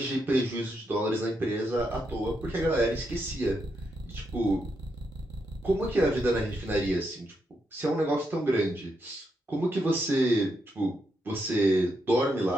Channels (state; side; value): normal; both; correlation 0.81